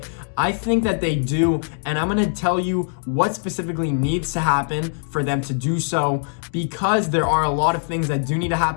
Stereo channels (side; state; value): right; silent; digital silence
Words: I think that they do, and I'm going to tell you what specifically needs to happen for them to do so, because there are a lot of things that do need to